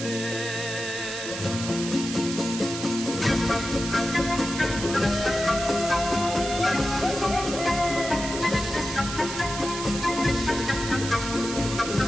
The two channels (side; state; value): right; noise; hiss, 7 dB below the sound